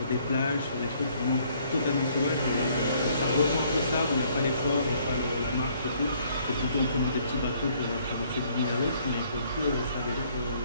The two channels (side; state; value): both; inverted; correlation -0.64